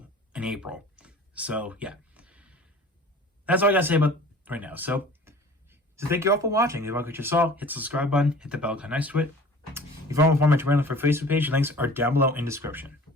in April. So, yeah. That's all I got to say about right now. So thank you all for watching. If you like what you saw, hit the subscribe button, hit the bell icon next to it. If you want to follow my Twitter for Facebook page, links are down below in the description.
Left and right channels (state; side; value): normal; both; correlation 0.45